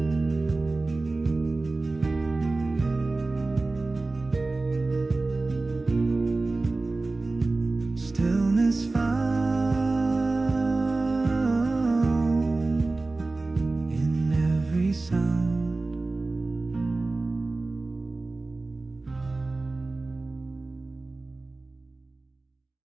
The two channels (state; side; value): quieter; left; 3.3 dB